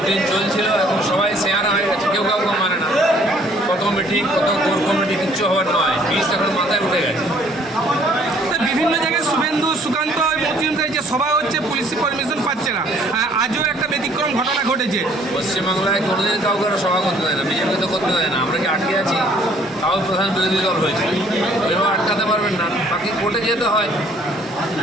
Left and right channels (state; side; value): normal; both; correlation 0.59